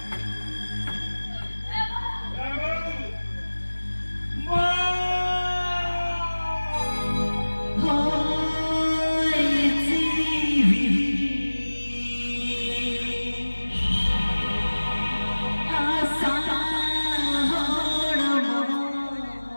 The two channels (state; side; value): inverted; both; correlation -1.00